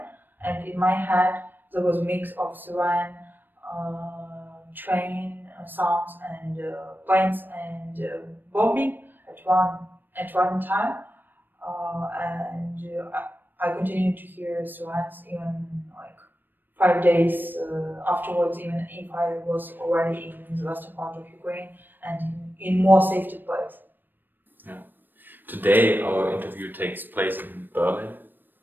and in my head there was a mix of siren, train sounds, and planes and bombing at one time, and I continued to hear sirens even like 5 days afterwards, even if I was already in the western part of Ukraine and in more safety place. Yeah. Today our interview takes place in Berlin,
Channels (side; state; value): left; late; 0.093 ms